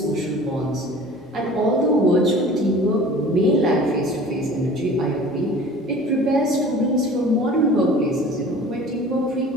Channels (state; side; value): normal; both; correlation 0.44